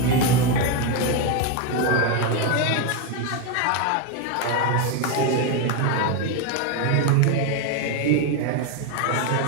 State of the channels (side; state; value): both; different; correlation 0.02